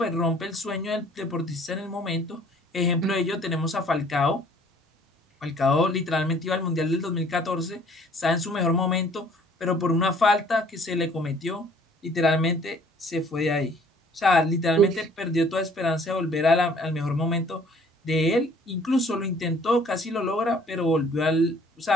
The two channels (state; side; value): normal; both; correlation 0.56